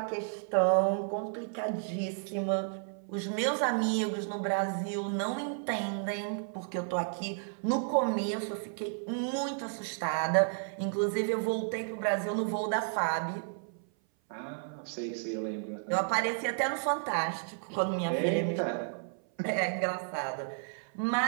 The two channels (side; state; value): left; silent; 56 dB below the other